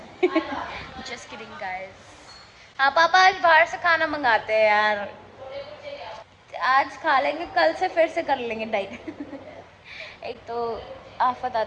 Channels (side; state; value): both; identical; correlation 1.00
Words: है। Just kidding guys. हाँ पापा आज बाहर से खाना मंगाते हैं यार, आज खा लेंगे, कल से फिर से कर लेंगे डाइट। एक तो आफत